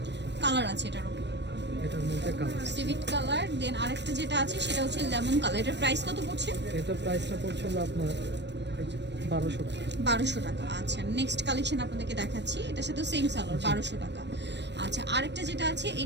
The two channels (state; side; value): late; left; 0.50 ms